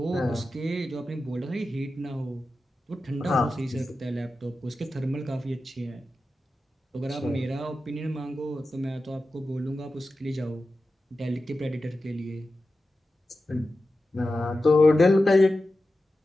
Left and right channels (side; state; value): both; normal; correlation 0.92